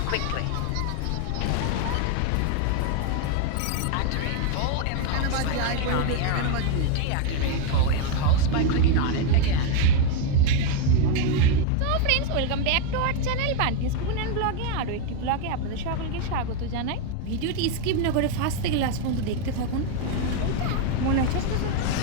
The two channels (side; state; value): both; different; correlation 0.01